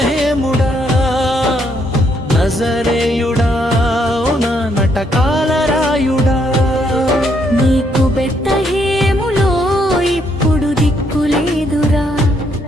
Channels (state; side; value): normal; both; correlation 0.73